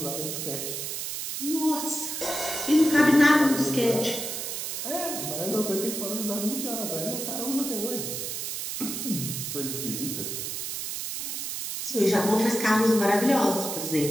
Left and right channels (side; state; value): right; noise; hiss, 4 dB below the sound